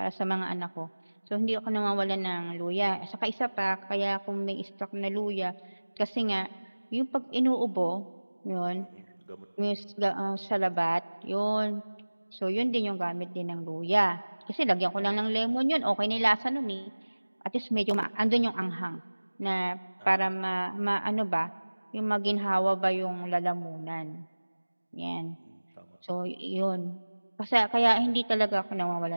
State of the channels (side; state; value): both; inverted; correlation -1.00